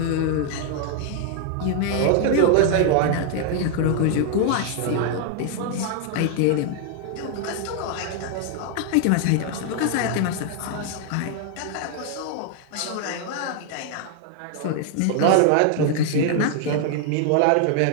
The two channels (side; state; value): both; different; correlation 0.00